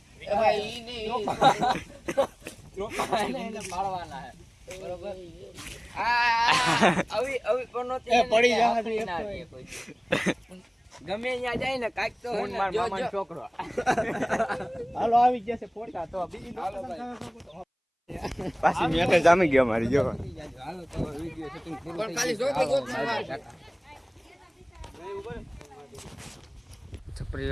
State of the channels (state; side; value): identical; both; correlation 1.00